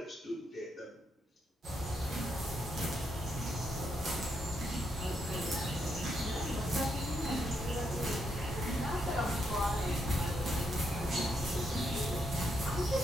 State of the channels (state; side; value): normal; both; correlation 0.79